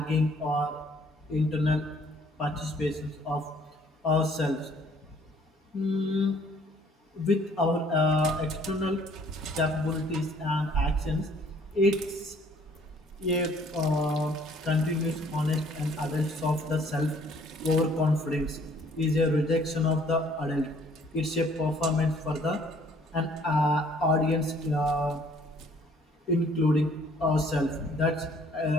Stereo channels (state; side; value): normal; both; correlation 0.60